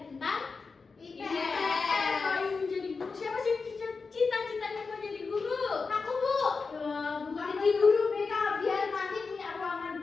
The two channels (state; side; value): quieter; right; 4.6 dB